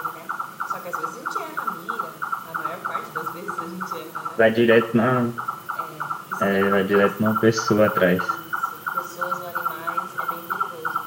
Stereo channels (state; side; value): identical; both; correlation 1.00